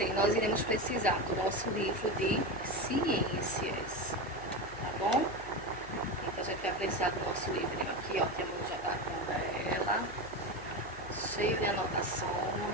nós iremos precisar do nosso livro de ciências, tá bom? Então a gente vai precisar do nosso livrinho aqui, ó, que a mãe já tá com ela, cheio de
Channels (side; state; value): left; noise; hum, 17 dB below the sound